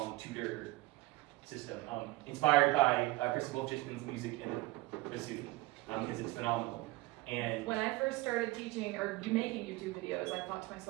tutor system, inspired by Chris Wolfchisman's music and bassoon, because it's phenomenal. And When I first started teaching or making YouTube videos, I thought to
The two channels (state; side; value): quieter; left; 20.5 dB